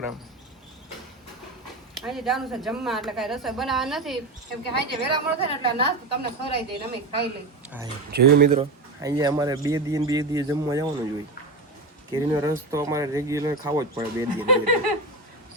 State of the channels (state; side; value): quieter; left; 3.0 dB